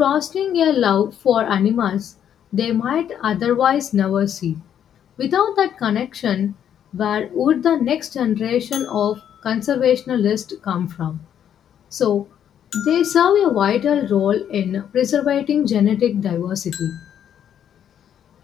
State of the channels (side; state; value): right; quieter; 9.5 dB